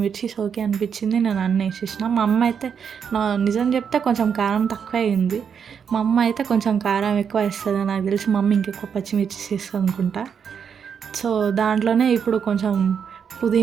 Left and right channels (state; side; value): quieter; left; 7.2 dB